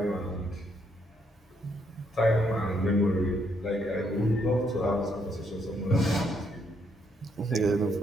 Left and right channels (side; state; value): both; normal; correlation 0.73